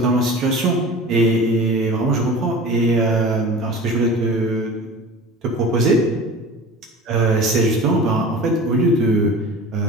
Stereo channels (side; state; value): both; normal; correlation 0.37